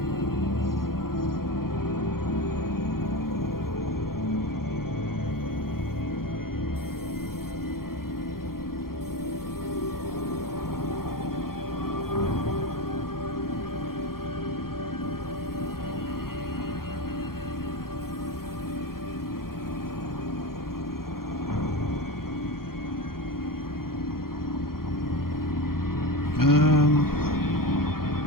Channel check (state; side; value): late; right; 0.92 ms